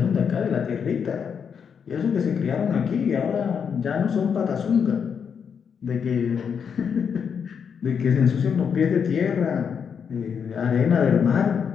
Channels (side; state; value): right; quieter; 6.9 dB